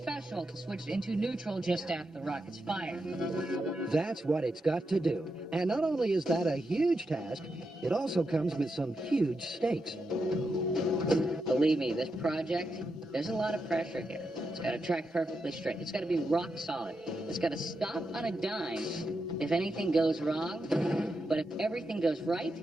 to switch into neutral just after the rocket's fired. That's what it's got to do. And not only is that a huge task, it also comes with some huge stakes. Believe me, this project, there's a lot of pressure here. It's got to track perfectly straight. It's got to be rock solid. It's got to stop on a dime if anything goes wrong. But if everything goes right,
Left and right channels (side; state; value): both; normal; correlation 0.86